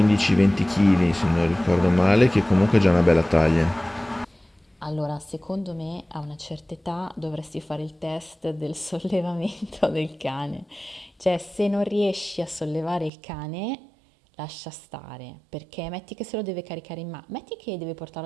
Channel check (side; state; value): left; drops out; at 13.1 s